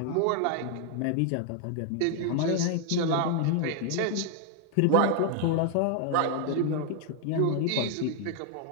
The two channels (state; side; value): different; both; correlation 0.00